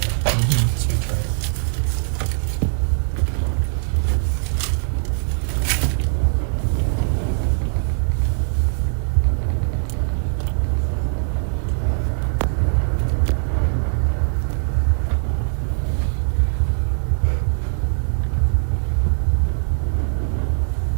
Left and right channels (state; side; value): silent; left; digital silence